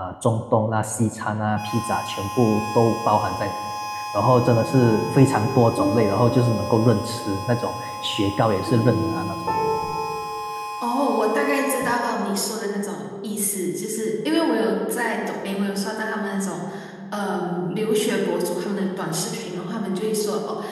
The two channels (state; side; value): identical; both; correlation 1.00